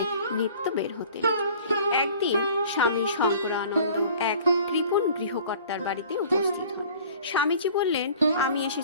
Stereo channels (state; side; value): inverted; both; correlation -0.48